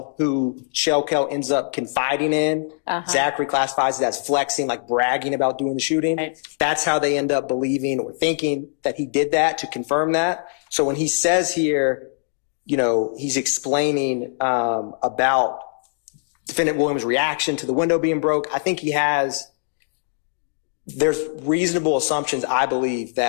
who Shell Kell ends up confiding in, Zachary classifies it as flexing, like bragging about doing the shooting. Right. That's how they end up believing or thinking that he did that, to confirm that. So when he says here, you know, he's explaining about Defendant Williams' reaction to the window being broke, I think there's reasonable assumptions, I believe,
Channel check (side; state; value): right; silent; digital silence